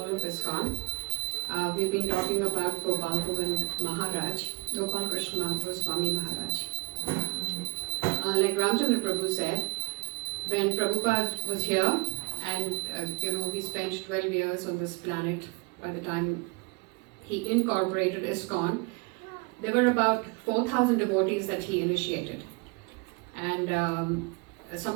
of ISKCON. We've been talking about Gopal and Maharaj, Gopal Krishna Goswami Maharaj. Like Ramchandra Prabhu said, when Prabhupada was here, and he spent 12 years on this planet by the time he incorporated ISKCON, there were about 4,000 devotees that he initiated. And some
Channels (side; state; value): left; quieter; 30.7 dB